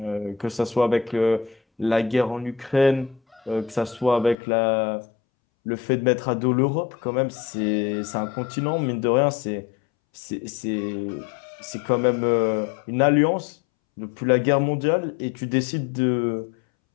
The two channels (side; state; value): right; drops out; at 4.4 s